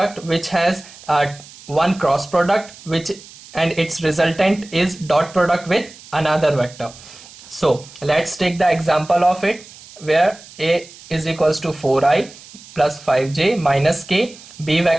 which has one cross product and its resultant is dot product with another vector. So let's take the example of it, where A is equals to 4i plus 5j minus k. B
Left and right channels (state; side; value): noise; right; hiss, 20 dB below the sound